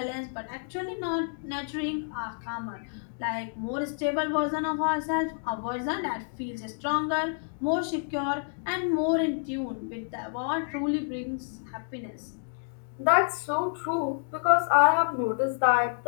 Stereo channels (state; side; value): silent; right; digital silence